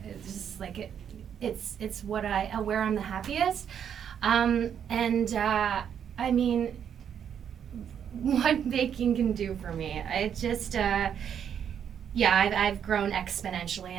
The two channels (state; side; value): quieter; left; 8.5 dB